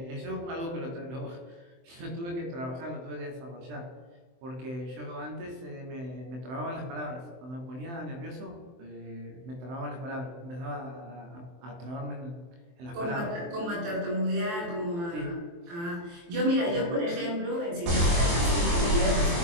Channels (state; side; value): late; left; 23 ms